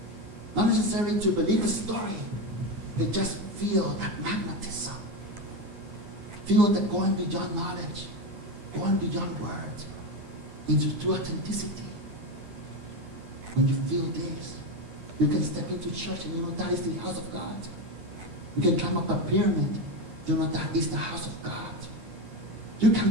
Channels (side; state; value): left; late; 9.8 ms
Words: Not necessarily to believe the story, but just feel that magnetism. Feel that going beyond knowledge, going beyond words, into true authenticity. When you feel this, you can step into church and you know that is the house of God. You can climb up a pyramid, you know that is the house of God. You can